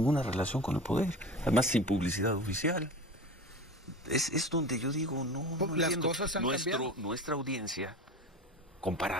relación con el poder, además sin publicidad oficial. Es donde yo digo, no las entiendo. cosas han cambiado. Nuestra audiencia,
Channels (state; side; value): normal; both; correlation 0.33